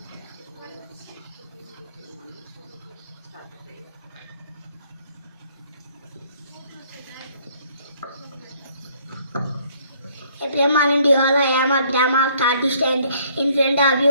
April morning, dear all, I am a grammar of 3rd standard. In front of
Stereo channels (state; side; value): inverted; both; correlation -0.64